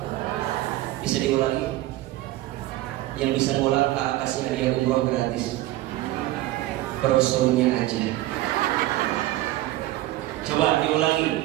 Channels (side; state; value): left; quieter; 16.3 dB